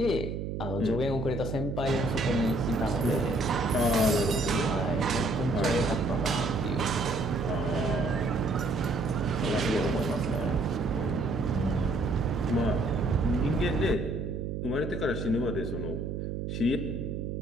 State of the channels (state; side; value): noise; right; hum, 4 dB below the sound